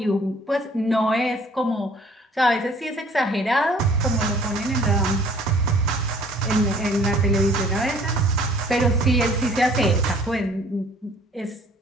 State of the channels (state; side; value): normal; both; correlation 0.55